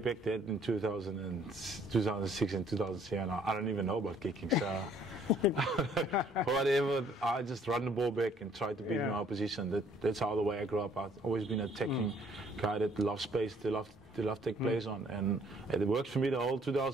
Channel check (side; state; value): both; normal; correlation 0.61